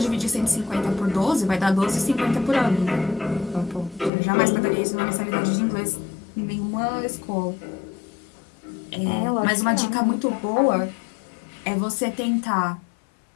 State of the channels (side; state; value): right; drops out; at 4.1 s